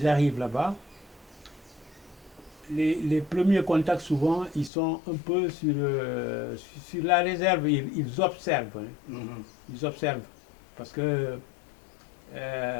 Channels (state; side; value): drops out; right; at 4.7 s